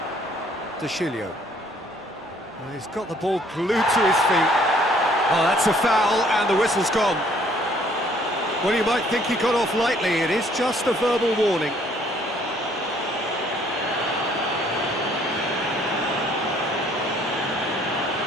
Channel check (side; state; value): both; normal; correlation 0.62